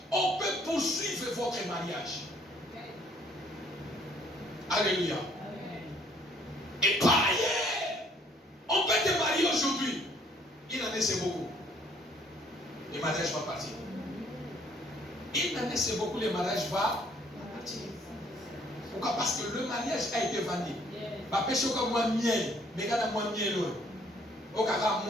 on peut poursuivre votre mariage. Alléluia. Et par ailleurs, on peut te marier aujourd'hui. Il en est, c'est beaucoup. Le mariage va partir. Il en est, c'est beaucoup. Le mariage va partir. Pourquoi? Parce que le mariage a été vendu. Ma péché au cas moi miel, mais quand moi miel, au cas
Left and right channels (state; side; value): normal; both; correlation 0.62